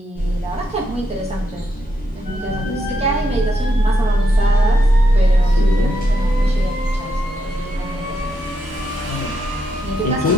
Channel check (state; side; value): normal; both; correlation 0.81